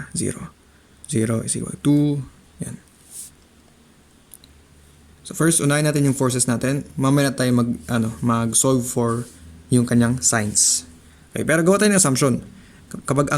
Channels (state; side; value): identical; both; correlation 1.00